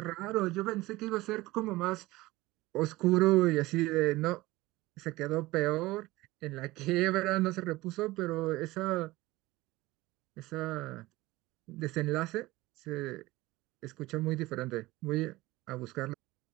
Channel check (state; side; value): quieter; left; 19.3 dB